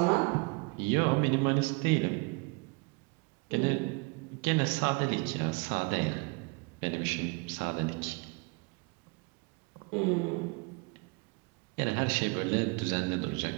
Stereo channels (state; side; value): quieter; left; 30.3 dB